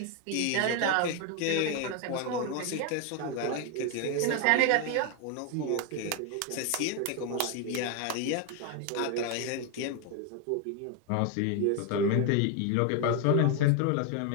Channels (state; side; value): different; both; correlation 0.01